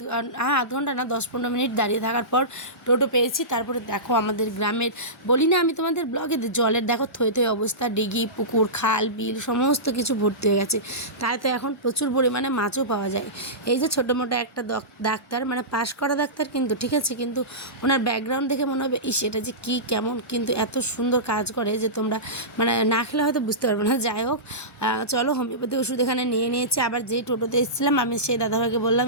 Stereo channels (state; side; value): normal; both; correlation -0.19